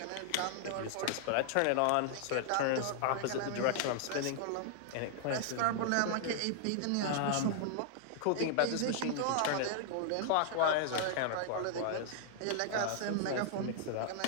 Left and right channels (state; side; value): different; both; correlation -0.01